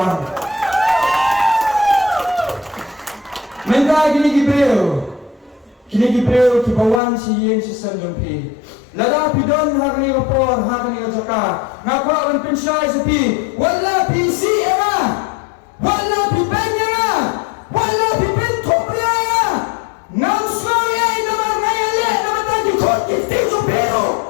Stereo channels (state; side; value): drops out; right; at 7.0 s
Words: menda kini gibreo kibawan si yeng si sanjumpi lada pidon hakni rapor hakni jaka ngakwa on pensyai sepi wala PC era wala pibenya wala pibin topria